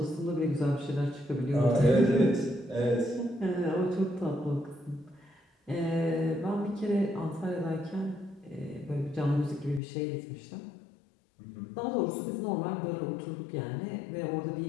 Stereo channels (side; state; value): right; drops out; at 9.8 s